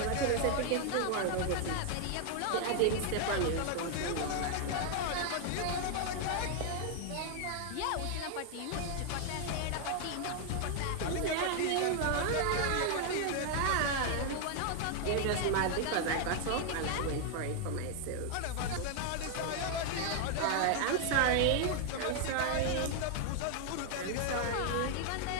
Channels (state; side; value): different; both; correlation 0.00